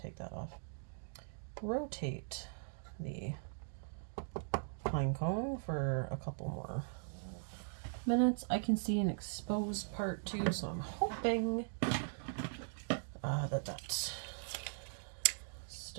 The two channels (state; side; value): silent; left; digital silence